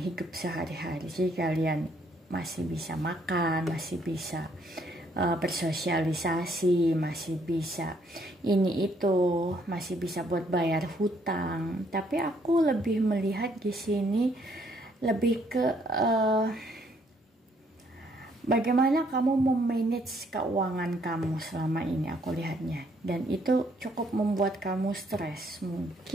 sehari-hari. Jadi kalian masih bisa makan, masih bisa bersosialisasi, masih bisa ini itu, masih bisa buat bayar hutang. Tapi aku lebih melihat di sini lebih ke bagaimana kamu memanage keuangan kamu selama ini, aku lihatnya. Dan itu cukup membuat kamu stres.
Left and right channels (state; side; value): normal; both; correlation 0.68